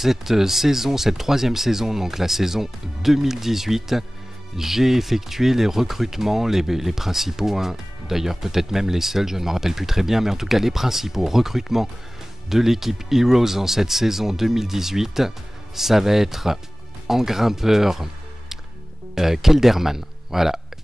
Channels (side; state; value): both; normal; correlation 0.98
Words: saison, cette troisième saison, donc la saison 2018, j'ai effectué les recrutements, les principaux, hein, d'ailleurs peut-être même les seuls, je ne me rappelle plus très bien, mais en tout cas les principaux recrutements de l'équipe Heroes en cette saison 2018, ça va être en grimpeur Kelderman. Voilà,